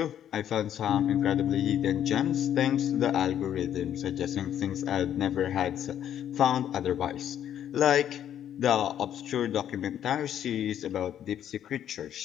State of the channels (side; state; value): right; quieter; 10.2 dB